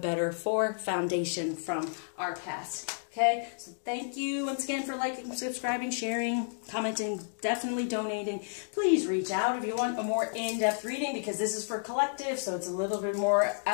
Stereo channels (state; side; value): silent; right; digital silence